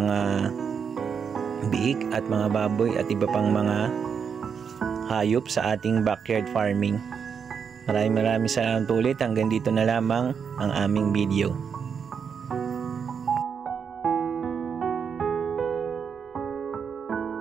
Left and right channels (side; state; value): left; quieter; 6.7 dB